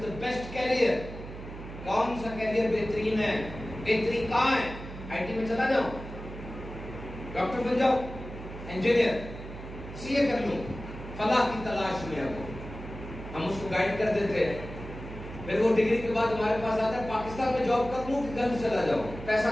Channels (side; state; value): right; noise; hum, 12 dB below the sound